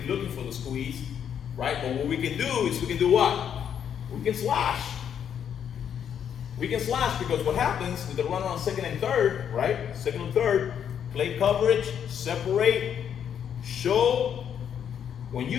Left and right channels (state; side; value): quieter; right; 8.6 dB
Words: looking for the squeeze, right? But what we can do is we can do what? We can slash. We can slash because what happens with the runner on second and third, right? Second and third, play coverage, separate, show. When